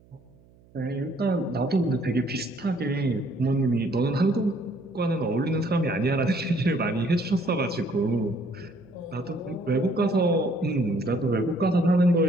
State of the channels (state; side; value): noise; right; hum, 28 dB below the sound